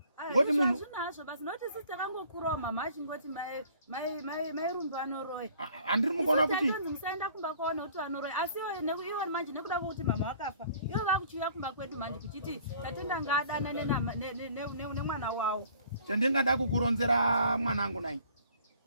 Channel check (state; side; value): inverted; both; correlation -0.55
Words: Ngoti munhu zvinazvo basi noti sisi takangokurawo mama achingoti mai Rumbi vanoroya. Handiri mukuona kuti musaenda kumba kwaona kuti vanoroya, asi iwo manje nekuda kwokuti mama wakafa iwo vakuchiuya kumba kwedu manje kuchiti tatenda ngaadana nemwana wawo. Chandingada kukuronzera mwanangu nai,